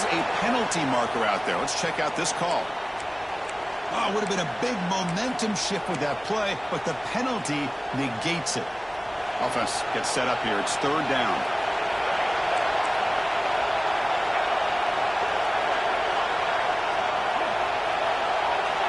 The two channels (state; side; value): identical; both; correlation 1.00